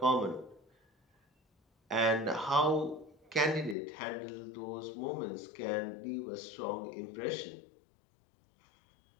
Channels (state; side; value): drops out; right; at 3.8 s